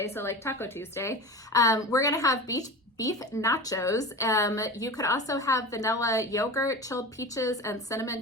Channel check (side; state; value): both; normal; correlation 0.30